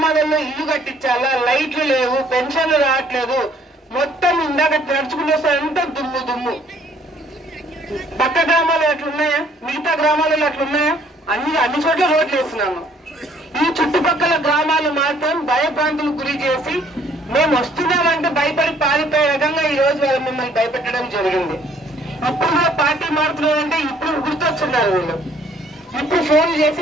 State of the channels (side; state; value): both; normal; correlation 0.61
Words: ఇల్లు కట్టించాలా, లైట్లు లేవు, పెన్షన్లు రావట్లేదు, మొత్తం ఇందాక నడుచుకుంటూ వస్తే అంతా దుమ్ము దుమ్ము. పక్క గ్రామాలు అట్లున్నాయా? మిగతా గ్రామాలలో అట్లున్నాయా? అన్ని చోట్ల రోడ్లు వేస్తున్నాము. ఈ చుట్టుపక్కల గ్రామాలు మాత్రం భయభ్రాంతులకు గురి చేసి మేము వస్తున్నామంటే భయపడి పారిపోయే రకంగా ఈ రోజు వాళ్ళు మిమ్మల్ని భయపెట్టడం జరిగింది. ఇప్పుడు కూడా పార్టీ మారుతున్నారంటే ఇప్పుడు గుర్తొస్తున్నారు వీళ్ళు. ఇప్పుడు ఫోన్లు